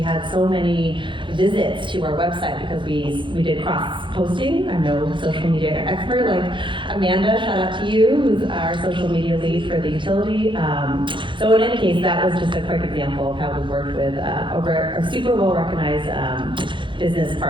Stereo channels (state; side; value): late; left; 0.24 ms